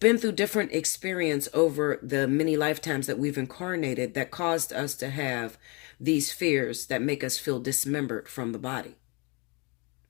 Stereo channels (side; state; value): right; quieter; 30.0 dB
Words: been through different experience over the many lifetimes that we've incarnated that caused us to have these fears that make us feel dismembered from the body.